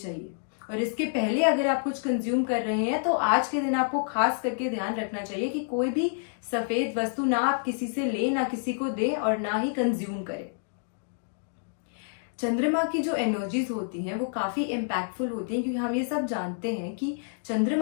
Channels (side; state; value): right; silent; digital silence